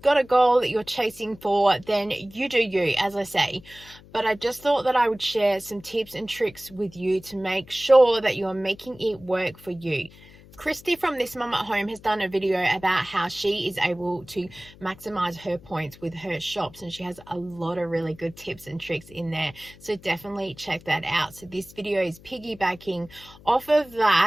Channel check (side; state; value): left; noise; hum, 22 dB below the sound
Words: got a goal that you're chasing for, then you do you, as I say. But I just thought that I would share some tips and tricks with you to make sure that you're making it work for you. Christy from This Mum at Home has done a video about how she is able to maximize her points with her shops, and she has a lot of really good tips and tricks in there, so definitely check that out. So this video is piggybacking off of